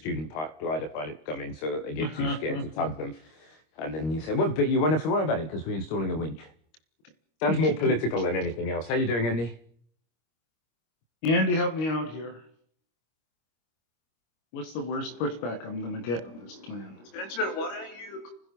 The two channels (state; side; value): late; right; 25 ms